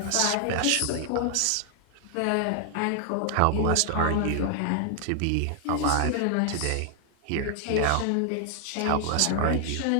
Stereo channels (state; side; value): different; both; correlation 0.00